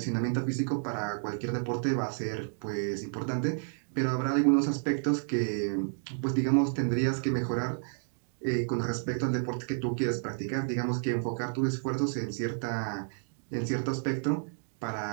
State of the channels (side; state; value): left; silent; digital silence